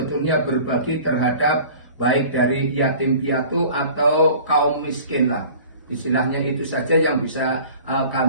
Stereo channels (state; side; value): inverted; both; correlation -0.45